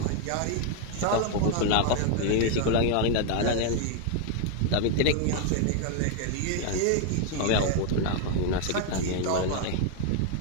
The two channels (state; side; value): different; both; correlation 0.00